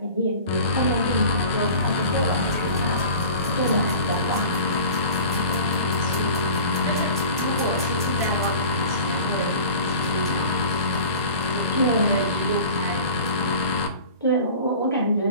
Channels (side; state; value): both; inverted; correlation -0.41